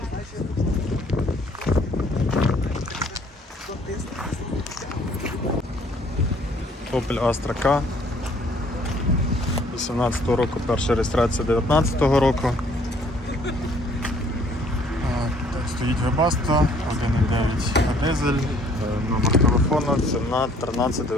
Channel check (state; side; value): normal; both; correlation 0.60